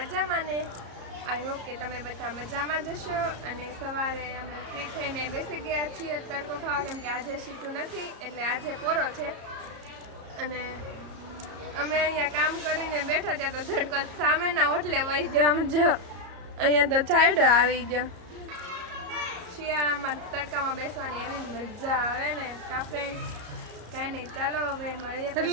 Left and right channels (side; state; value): left; late; 34 ms